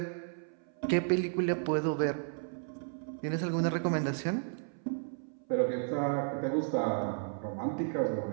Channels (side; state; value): left; silent; 55 dB below the other